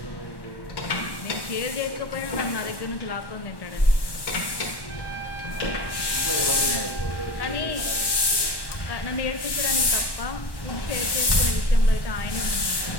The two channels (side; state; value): right; late; 1.1 ms